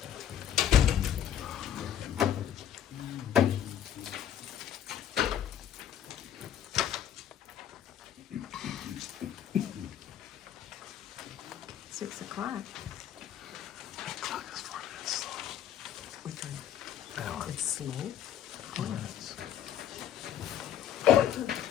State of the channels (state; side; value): quieter; right; 10.1 dB